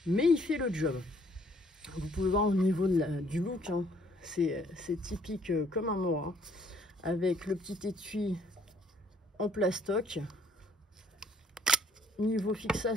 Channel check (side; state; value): both; normal; correlation 0.62